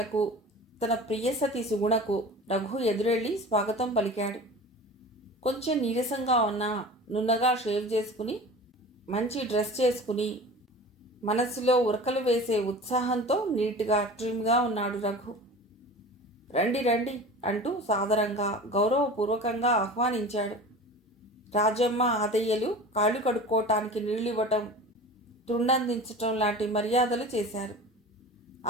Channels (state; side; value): normal; both; correlation 0.37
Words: తన ప్రియసతి సుగుణకు రఘు ఎదురెళ్ళి స్వాగతం పలికాడు. కొంచెం నీరసంగా ఉన్నా నున్నగా షేవ్ చేసుకుని మంచి డ్రెస్ చేసుకుని మనస్సులో ఉరకలు వేసే ఉత్సాహంతో నీట్గా ట్రిమ్గా ఉన్నాడు రఘు. రండి రండి అంటూ సాదరంగా గౌరవపూర్వకంగా ఆహ్వానించాడు. రాజమ్మ ఆదయ్యలు కాళ్ళు కడుక్కోవటానికి నీళ్ళివ్వటం, తుండందించటం లాంటి మర్యాదలు చేశారు.